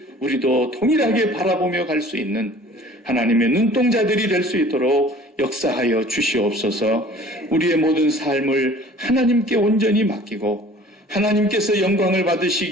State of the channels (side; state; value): both; normal; correlation 0.48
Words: 우리도 동일하게 바라보며 갈 수 있는 하나님의 눈동자들이 될 수 있도록 역사하여 주시옵소서. 우리의 모든 삶을 하나님께 온전히 맡기고 하나님께서 영광을